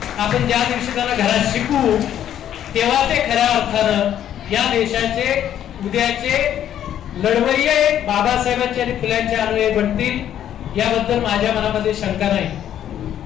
आपण ज्या दिवशी त्यांना घरात शिकू तेव्हा ते खऱ्या अर्थानं या देशाचे उद्याचे लढवय्ये बाबासाहेबांचे आणि फुल्यांचे अनुयायी बनतील, याबद्दल माझ्या मनामध्ये शंका नाही.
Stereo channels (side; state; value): right; quieter; 10.6 dB